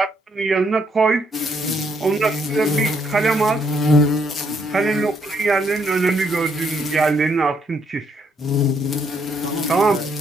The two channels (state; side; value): normal; both; correlation 0.72